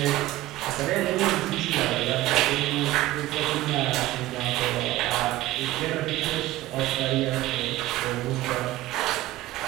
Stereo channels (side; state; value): left; quieter; 16.3 dB